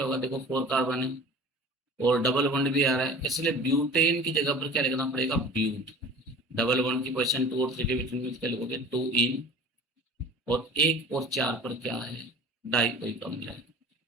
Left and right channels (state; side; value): normal; both; correlation 0.41